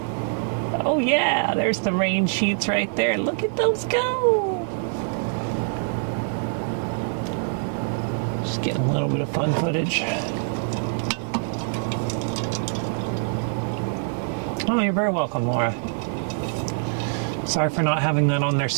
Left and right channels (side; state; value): left; silent; digital silence